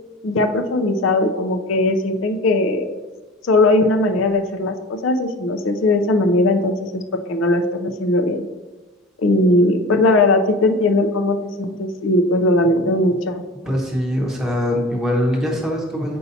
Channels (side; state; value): both; normal; correlation 0.36